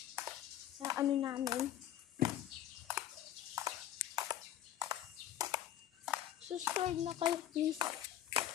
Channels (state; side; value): quieter; right; 11.9 dB